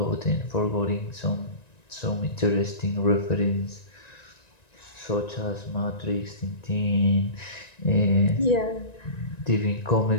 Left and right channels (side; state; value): right; late; 1.9 ms